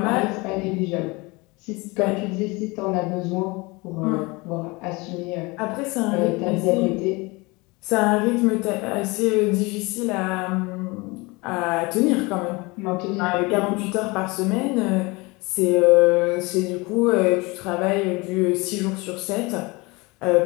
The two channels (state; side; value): quieter; right; 25.1 dB